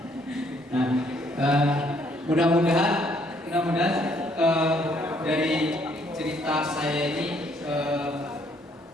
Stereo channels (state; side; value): normal; both; correlation 0.67